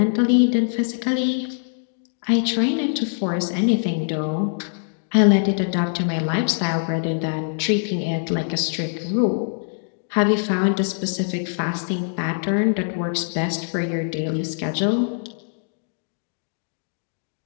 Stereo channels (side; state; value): right; silent; digital silence